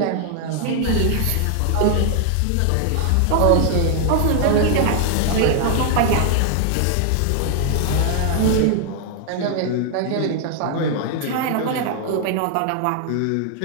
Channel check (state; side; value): different; both; correlation 0.00